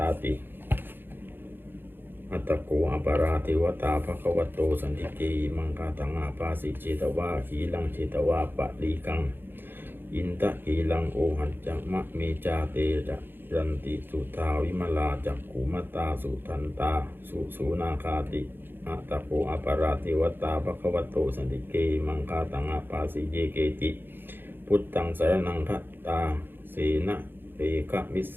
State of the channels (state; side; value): late; left; 0.099 ms